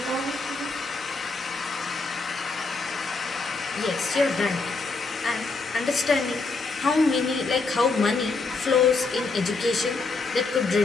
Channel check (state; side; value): quieter; right; 3.9 dB